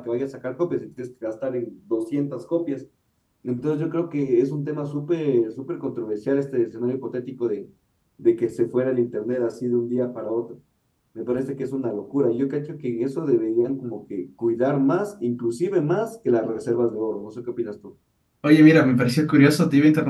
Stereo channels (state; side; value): identical; both; correlation 1.00